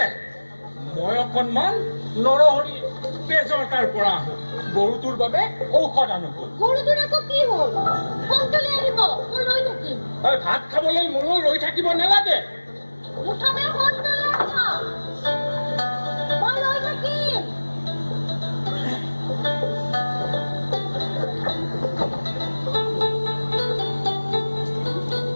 মই অকণমান নৰহৰি তেজৰ তাৰ পৰা আহোঁ। গৰুটোৰ বাবে ঔষধ আনোগৈ। গৰুটোৰ আকৌ কি হ'ল? সোনকালে আহিব, মই ৰৈ থাকিম। ভাত খাবলৈ মোলৈ ৰৈ থাকিব নালাগে। মুঠতে সোনকালে আহিব, মই ৰৈ থাকিম।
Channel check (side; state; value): both; inverted; correlation -1.00